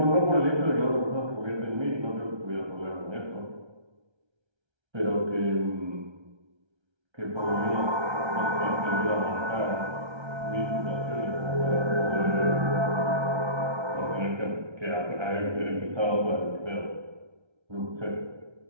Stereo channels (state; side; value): late; left; 1.3 ms